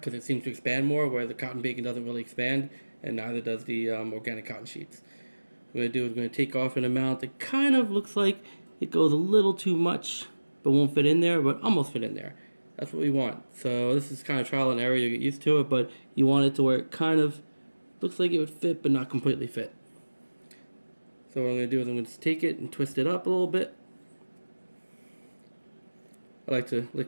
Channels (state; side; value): inverted; both; correlation -1.00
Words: it seems to expand more, where the cotton bacon doesn't really expand, and neither does the organic cotton sheets. What I'm going to do is I'm going to take off an amount that kind of looks like it goes a little too much, but won't fit in there, but almost fit in there. That's what we want. So this is kind of trial and error, you get used to it, but you want it to where it kind of looks like it would fit, but not completely fit. So what I'm going to do is I'm going to take it and twist it up a little bit. I like to